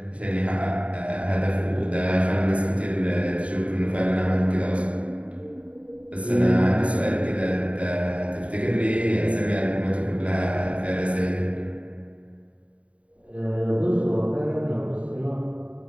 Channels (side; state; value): left; late; 0.064 ms